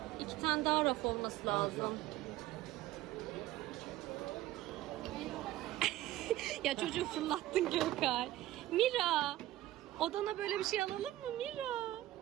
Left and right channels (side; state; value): left; quieter; 15.2 dB